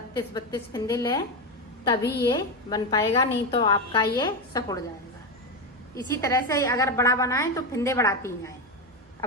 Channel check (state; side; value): normal; both; correlation 0.13